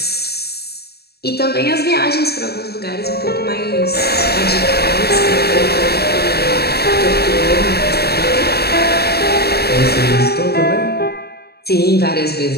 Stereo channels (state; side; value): late; right; 0.47 ms